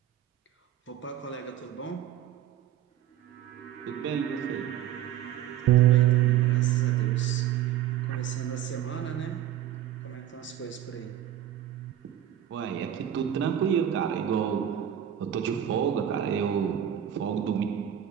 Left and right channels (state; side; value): quieter; left; 11.0 dB